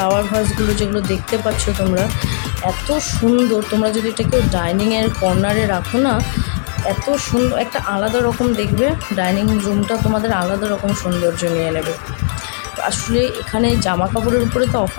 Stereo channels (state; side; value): silent; right; digital silence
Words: ভাসগুলো যেগুলো দেখতে পাচ্ছ তোমরা, এত সুন্দর। তোমরা যদি এটা কেউ ডাইনিংয়ের কর্নারে রাখো না, এত সুন্দর একটা আলাদা রকম দেখবে, ডাইনিং রুমটা তোমাদের আলাদা রকম সৌন্দর্য নিয়ে নেবে। আসলে এখানে জামা কাপড়ের উপরে তো